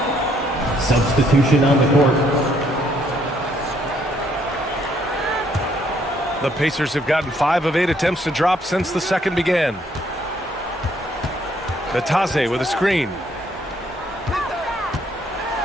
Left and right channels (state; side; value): normal; both; correlation 0.68